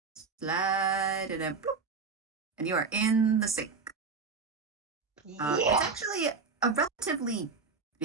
slide and then bloop, and you are in the sink. It's Yeah. actually a relatively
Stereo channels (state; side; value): quieter; left; 4.8 dB